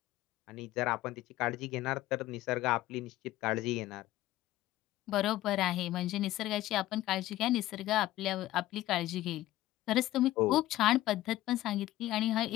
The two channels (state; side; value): quieter; right; 15.5 dB